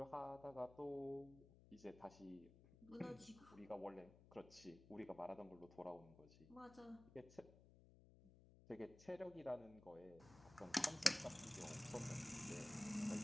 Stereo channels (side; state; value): left; noise; hum, 20 dB below the sound